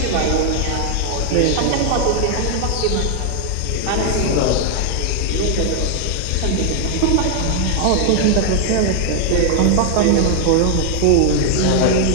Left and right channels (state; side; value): different; both; correlation 0.00